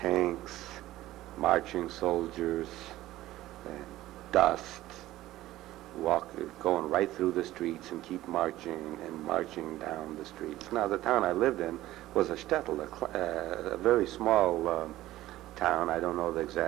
marching soldiers, dust, going right through the streets and keep marching down the streets. Now, the town I lived in was a shtetl, a very small town. I don't know the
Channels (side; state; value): left; quieter; 15.6 dB